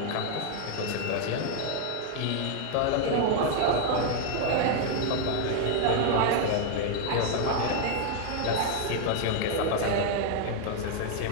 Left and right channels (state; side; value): different; both; correlation 0.00